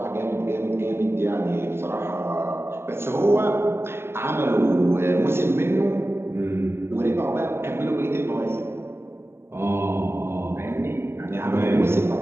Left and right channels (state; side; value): late; left; 0.12 ms